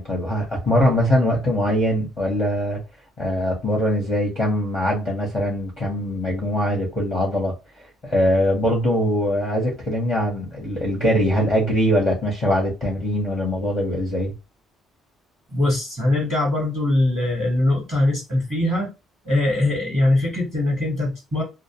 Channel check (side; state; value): both; normal; correlation 0.72